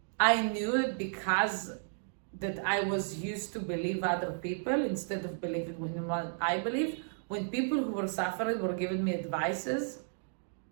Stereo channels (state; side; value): silent; left; digital silence